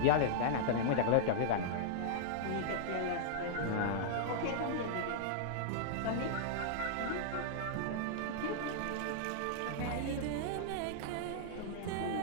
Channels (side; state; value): both; different; correlation -0.02